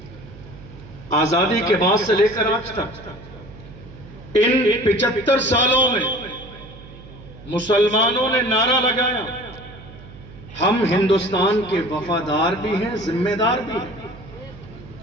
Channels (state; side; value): noise; right; hum, 18 dB below the sound